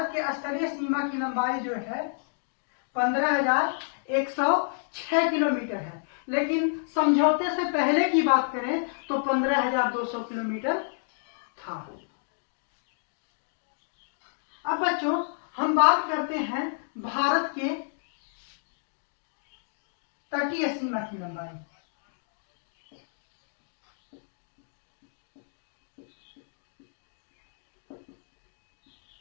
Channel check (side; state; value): right; silent; digital silence